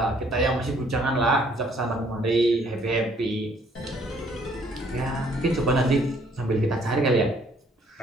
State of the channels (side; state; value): both; normal; correlation 0.63